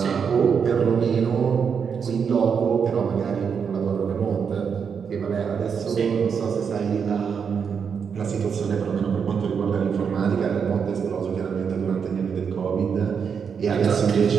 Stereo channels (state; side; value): quieter; left; 6.6 dB